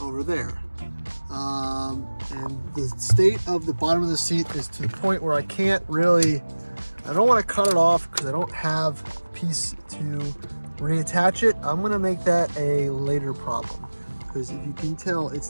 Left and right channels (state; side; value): inverted; both; correlation -1.00